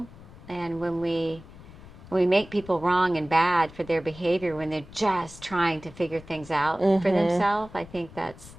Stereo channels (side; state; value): left; noise; rumble, 19 dB below the sound